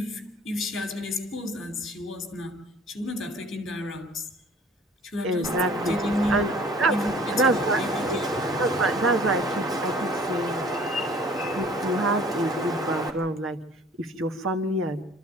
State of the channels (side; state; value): both; normal; correlation 0.51